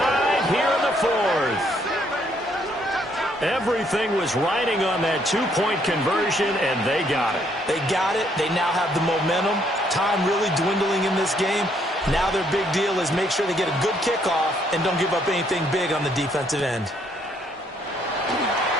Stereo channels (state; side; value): normal; both; correlation 0.69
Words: here in the fourth. Everything was riding on that two-point conversion, and they got it. They got it. They now have the momentum. Time really dwindling in this game. Now their big deal is make sure they get a good kickoff and don't give up anything big on the defensive end.